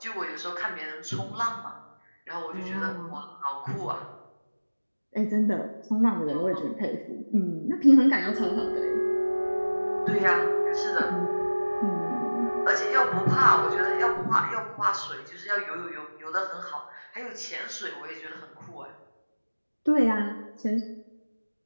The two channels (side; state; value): both; inverted; correlation -1.00